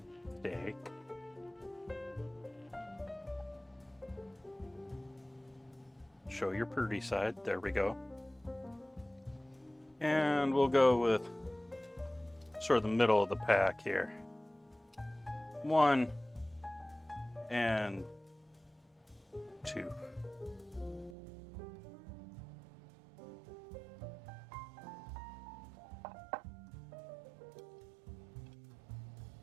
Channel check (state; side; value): drops out; left; at 21.2 s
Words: Stay. Show your pretty side. There we go. And we'll go with sort of the middle of the pack here. 1 and 2.